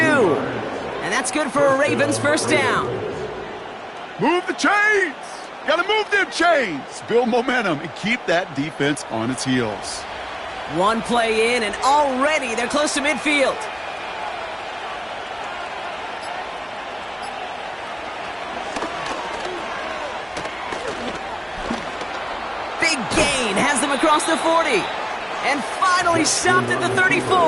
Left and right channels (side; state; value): both; identical; correlation 1.00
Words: that's good for a Ravens first down. Move the chains. Got to move them chains. Build momentum and keep that defense on its heels. One play in, and already they're close to midfield. Big gain has them across the 40. And finally stopped at the